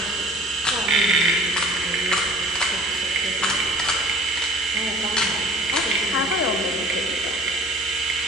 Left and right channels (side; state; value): left; noise; hum, 22 dB below the sound